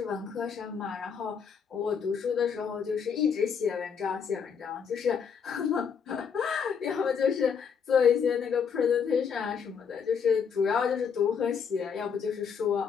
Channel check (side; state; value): right; quieter; 6.7 dB